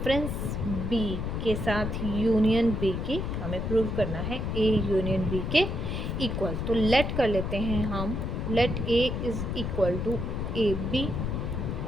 B के साथ यूनियन B की हमें प्रूव करना है A यूनियन B के इक्वल. तो लेट कर लेते हैं हम, let A is equal to A B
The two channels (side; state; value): left; noise; rumble, 2 dB below the sound